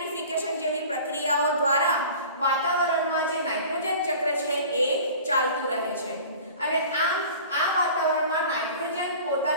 જેવી પ્રક્રિયાઓ દ્વારા વાતાવરણમાં જે નાઇટ્રોજન ચક્ર છે એ ચાલતું રહે છે. અને આ વાતાવરણમાં નાઇટ્રોજન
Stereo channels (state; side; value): inverted; both; correlation -0.42